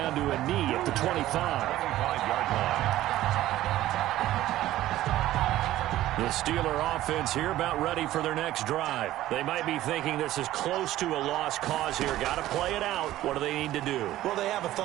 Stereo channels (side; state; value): left; quieter; 14.6 dB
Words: to a knee at the 25. 25-yard line. The Steeler offense here about ready for their next drive. They might be thinking this is close to a lost cause here. Got to play it out. What do they need to do? Well, they have a